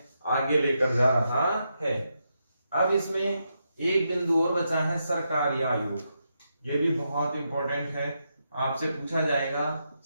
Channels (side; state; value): both; inverted; correlation -0.83